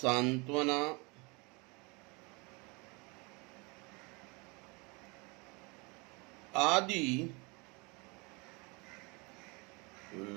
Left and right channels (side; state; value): left; quieter; 28.4 dB